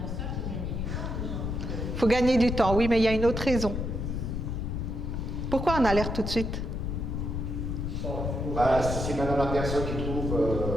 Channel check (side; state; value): left; noise; rumble, 2 dB below the sound